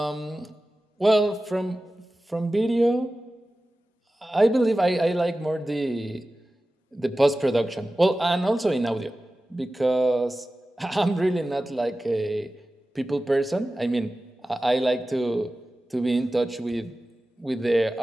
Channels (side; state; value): both; normal; correlation 0.95